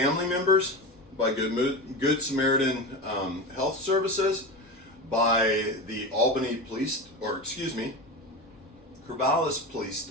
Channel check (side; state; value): both; normal; correlation 0.23